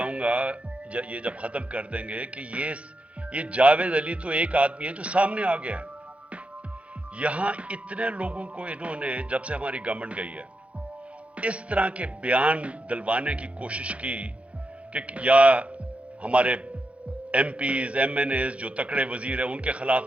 گا یہ جب ختم کر دیں گے کہ یہ جاوید علی تو ایک آدمی ہے جو سامنے آ گیا ہے. یہاں اتنے لوگوں کو انہوں نے جب سے ہماری گورنمنٹ گئی ہے اس طرح کے بیان دلوانے کی کوشش کی کہ یا ہمارے MPs MNAs جو تکڑے وزیر ہیں ان کے خلاف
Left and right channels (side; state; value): left; late; 0.063 ms